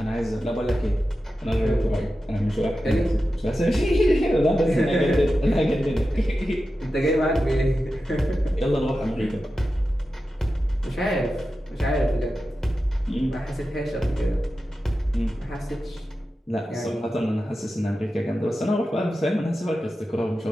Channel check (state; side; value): normal; both; correlation 0.92